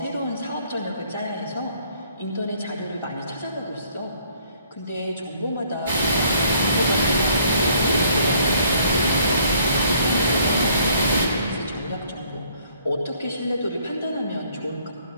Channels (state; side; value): inverted; both; correlation -0.63